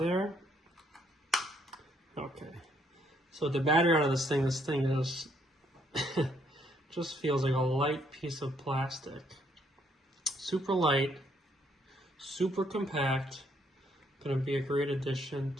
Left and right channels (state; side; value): normal; both; correlation 0.70